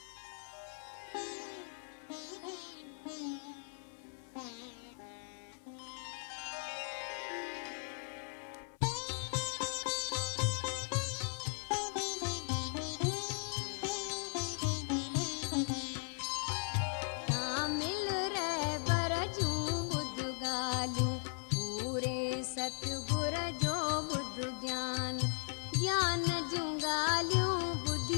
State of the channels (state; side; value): silent; right; 53 dB below the other